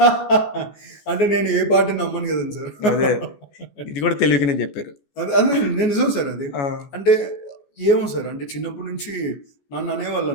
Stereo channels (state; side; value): late; right; 14 ms